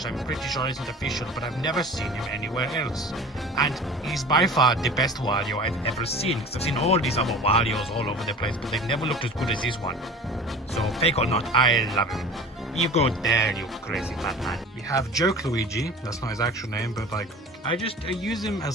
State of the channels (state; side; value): normal; both; correlation 0.40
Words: I'm pretty sure isn't official, but I've never seen him anywhere else. And he's by far the best Wario I've ever seen, because I've seen all these other Warios all over the place, but they've never looked as good as this one. So, fake or not, I love him. You go there, you crazy fat man. We have Joke Luigi. That's not his actual name, but like, I use him